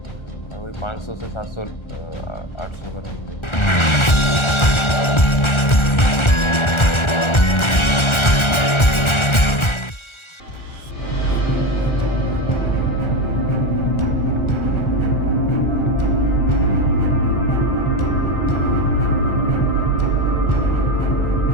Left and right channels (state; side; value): late; right; 1.4 ms